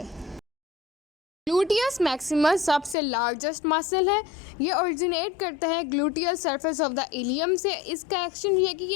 ग्लूटियस मैक्सिमस सबसे लार्जेस्ट मसल है। ये ओरिजिनेट करता है gluteal surface of the ilium से। इसका एक्शन ये है कि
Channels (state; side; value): drops out; right; at 3.0 s